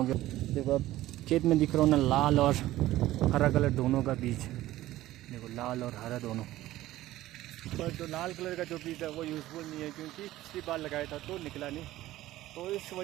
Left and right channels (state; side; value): quieter; left; 15.6 dB